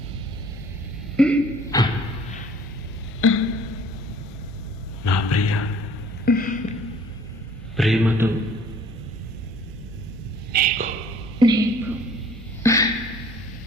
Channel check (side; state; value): both; normal; correlation 0.53